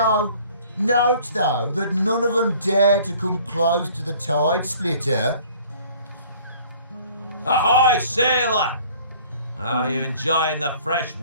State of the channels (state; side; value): inverted; both; correlation -0.53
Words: Note, though, that none of them dared to come close to the tide splitter. Ahoy, sailor! Are you enjoying the fresh